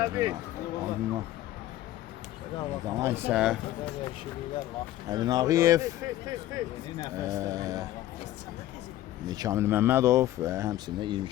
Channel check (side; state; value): right; quieter; 14.2 dB